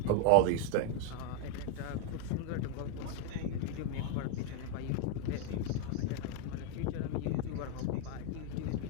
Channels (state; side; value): different; both; correlation 0.01